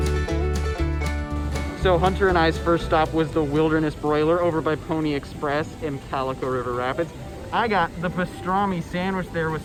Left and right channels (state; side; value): identical; both; correlation 1.00